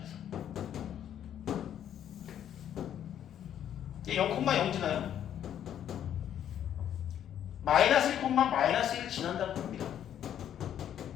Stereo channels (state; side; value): quieter; right; 10.1 dB